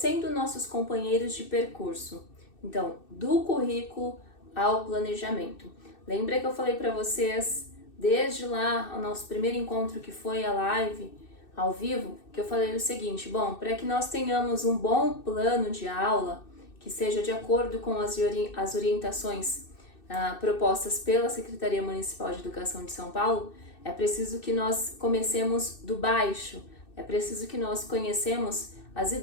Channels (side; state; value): right; late; 2.6 ms